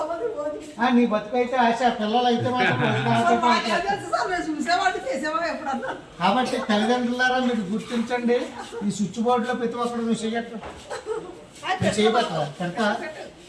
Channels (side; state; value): both; identical; correlation 1.00